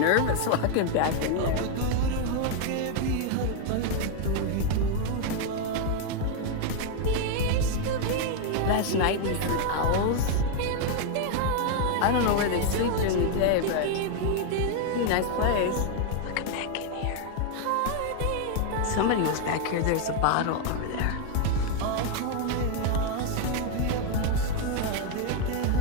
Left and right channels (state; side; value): different; both; correlation 0.01